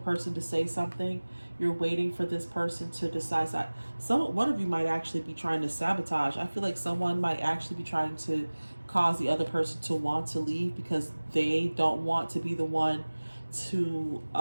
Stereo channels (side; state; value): both; inverted; correlation -1.00